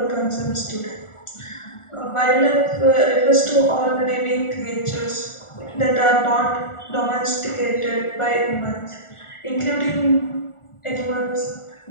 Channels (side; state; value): right; late; 1.4 ms